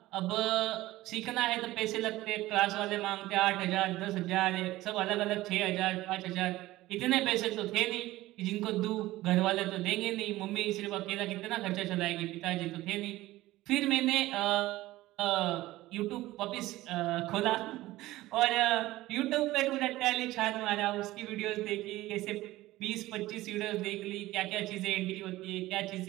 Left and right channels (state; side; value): quieter; left; 17.2 dB